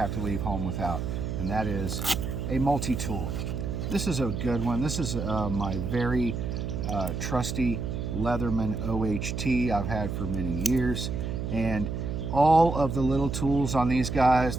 to leave home without, and that is a multi-tool. This is a good one. This is my very trusty Leatherman OHT I've had for many years, and all of the little tools on these guys,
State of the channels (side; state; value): right; noise; hum, 3 dB below the sound